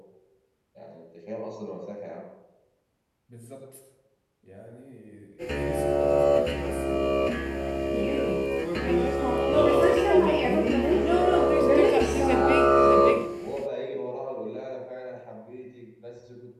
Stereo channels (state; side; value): identical; both; correlation 1.00